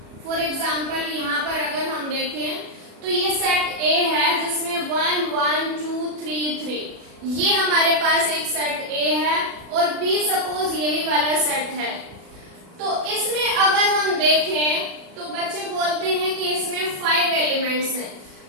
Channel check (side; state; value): left; late; 36 ms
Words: फॉर एग्जाम्पल यहाँ पर अगर हम देखें तो ये सेट ए है जिसमें 1 1 2 3 3, ये हमारे पास एक सेट ए है, और बी सपोज यही वाला सेट है। तो इसमें अगर हम देखें तो बच्चे बोलते हैं कि इसमें 5 एलिमेंट्स हैं,